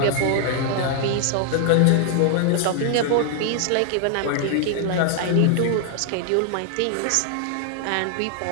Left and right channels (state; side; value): different; both; correlation 0.00